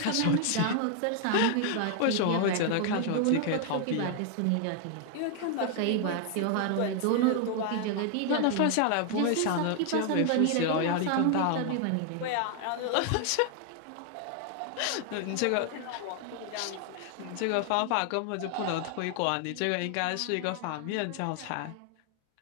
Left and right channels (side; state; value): both; different; correlation 0.00